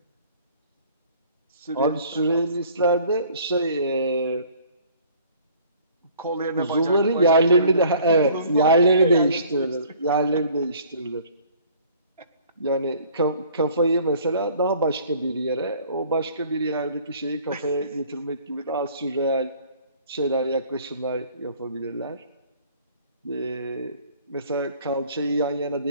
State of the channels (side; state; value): both; inverted; correlation -0.53